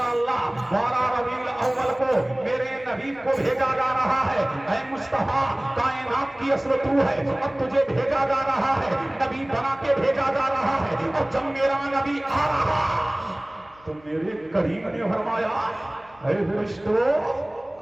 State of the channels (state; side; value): noise; left; hum, 27 dB below the sound